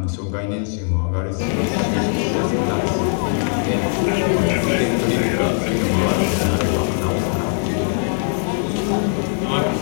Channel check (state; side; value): silent; right; 66 dB below the other